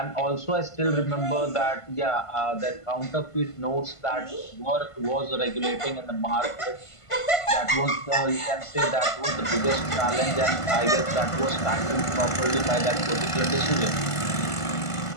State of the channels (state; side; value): late; right; 1.5 ms